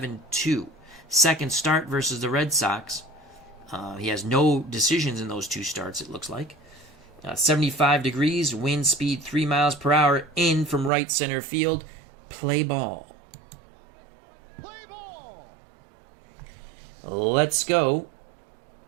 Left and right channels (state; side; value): drops out; left; at 10.9 s